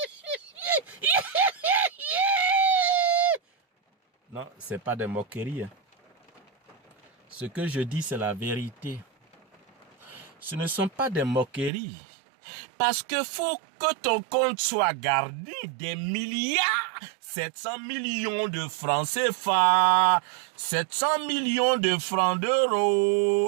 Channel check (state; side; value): drops out; left; at 11.7 s